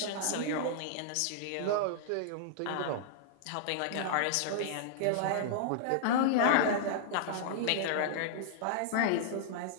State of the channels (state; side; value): different; both; correlation -0.01